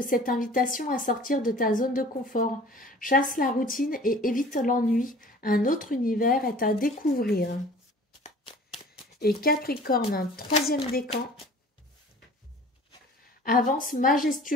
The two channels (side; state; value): both; normal; correlation 0.46